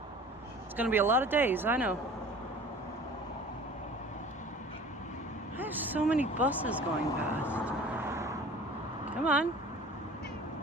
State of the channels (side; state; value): both; normal; correlation 0.44